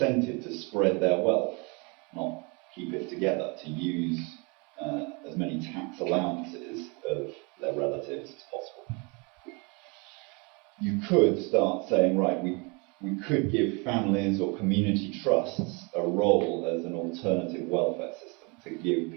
to spread their wealth, not keep it together, to use as many tax allowances of their relatives as possible. You could start saying, right, we could give families or community trusts a role as an alternative welfare system to give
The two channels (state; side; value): quieter; left; 30.5 dB